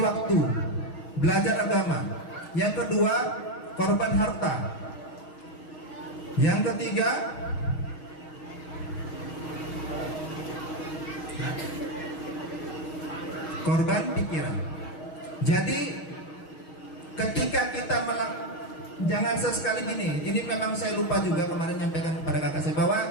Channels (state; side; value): late; right; 6.3 ms